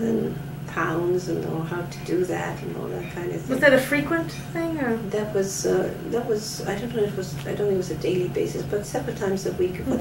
pounds, and how to do that and all that kind of thing. Was that a frequent thing, or? That was I don't know. I don't think it was a daily basis, but several times a week for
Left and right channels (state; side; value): identical; both; correlation 1.00